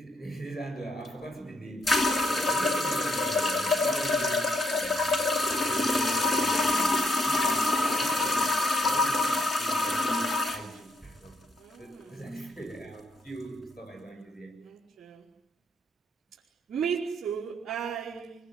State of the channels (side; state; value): both; normal; correlation 0.74